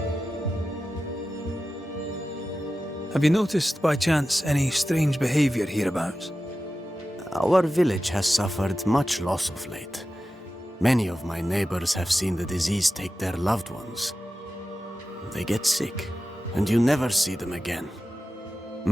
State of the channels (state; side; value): normal; both; correlation 0.93